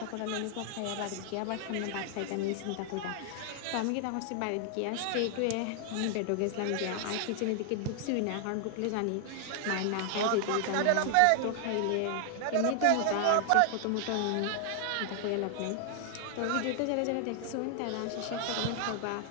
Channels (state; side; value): different; both; correlation 0.00